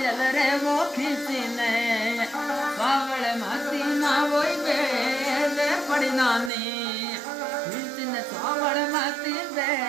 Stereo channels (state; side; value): drops out; left; at 6.5 s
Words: रे वो खींची ने सावल माती ना वोई बेदे पड़ी नानी खींची ने सावल माती